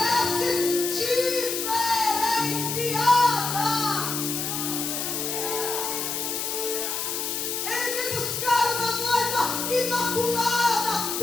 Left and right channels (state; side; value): noise; left; hiss, 2 dB below the sound